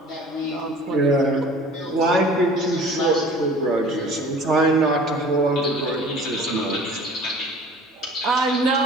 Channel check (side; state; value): both; normal; correlation 0.46